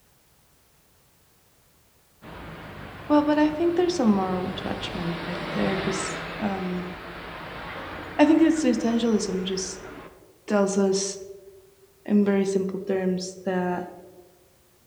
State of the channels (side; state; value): both; identical; correlation 1.00